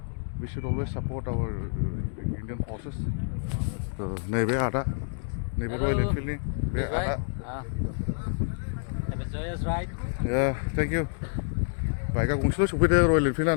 we should always support our Indian forces नैबे आदा नैबे रयेल एनफिल्डनि बे आदा Yeah, thank you. बाइकआ गंसेल' सफैदो रयेल एनफिल्डआ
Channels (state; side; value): silent; right; digital silence